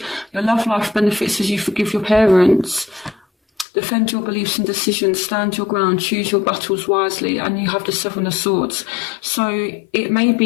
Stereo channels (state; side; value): drops out; right; at 3.7 s